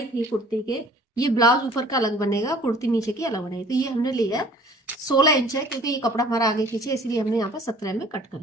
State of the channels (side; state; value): both; normal; correlation 0.51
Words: थी कुर्ती के, ये ब्लाउज ऊपर का अलग बनेगा, कुर्ती नीचे की अलग बनेगी। तो ये हमने लिया 16 इंच है, क्योंकि ये कपड़ा हमारा आगे पीछे, इसलिए हमने यहाँ पर 17 में कट कर